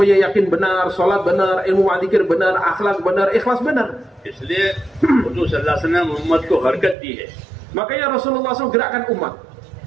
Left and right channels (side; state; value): left; drops out; at 7.0 s